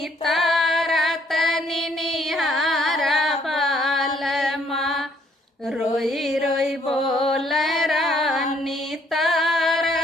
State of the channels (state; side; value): normal; both; correlation 0.66